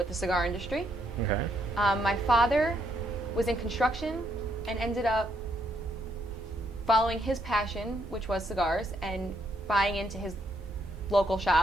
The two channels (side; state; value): both; normal; correlation 0.74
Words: the cigar industry. Okay. My father was in construction and ended up following his passion, which was cigars, and buying into his local